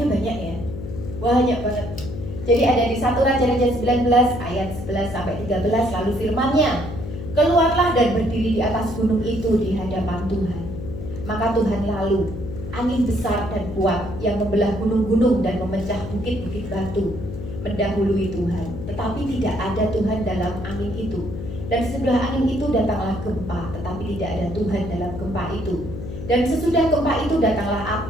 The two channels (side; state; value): left; noise; hum, 8 dB below the sound